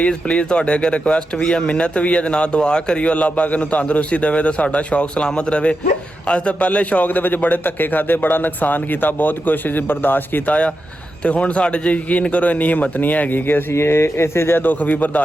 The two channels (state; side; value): normal; both; correlation 0.89